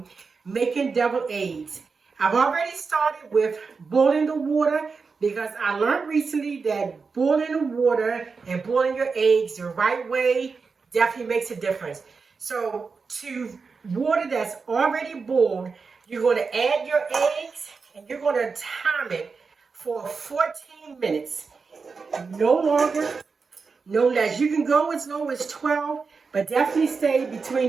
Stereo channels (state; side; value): quieter; left; 4.9 dB